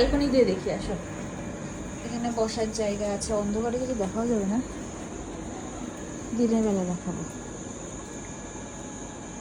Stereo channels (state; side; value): identical; both; correlation 1.00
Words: দিয়ে দেখি আসো, এখানে বসার জায়গা আছে, অন্ধকারে কিছু দেখাও যাবে না, দিনের বেলা দেখাবো।